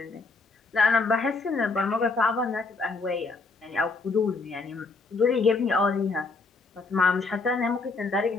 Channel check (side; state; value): right; quieter; 3.9 dB